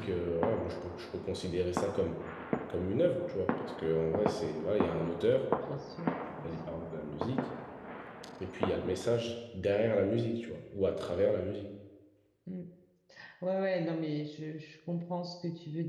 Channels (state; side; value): identical; both; correlation 1.00